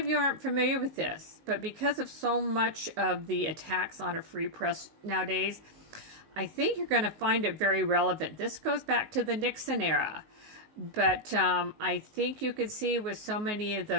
you aren't familiar with this, but because of so much of the attacks on a free press nowadays, I think you're going to find it very relevant. This goes back to the Nixon era, but I think you could see with so many of the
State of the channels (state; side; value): late; left; 19 ms